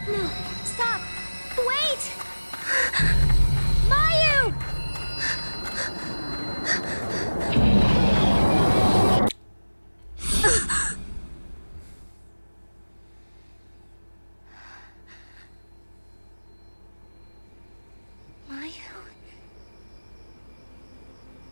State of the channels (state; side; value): inverted; both; correlation -1.00